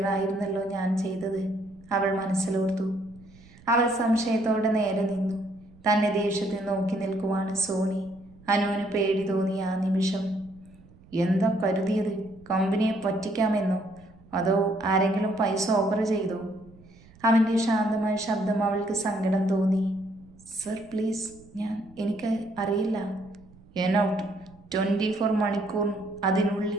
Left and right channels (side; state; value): right; noise; rumble, 25 dB below the sound